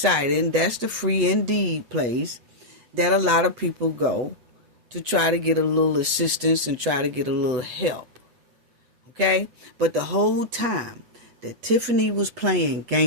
And that's the Free Indeed place that a lot of people go to try to get a little assistance and try to get a little help. Okay? But the whole time that Tiffany was playing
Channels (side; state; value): left; late; 8.0 ms